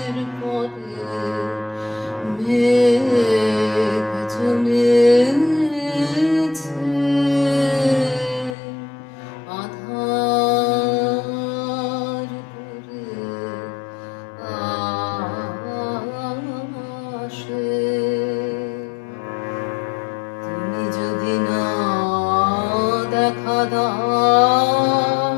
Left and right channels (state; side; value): drops out; right; at 8.6 s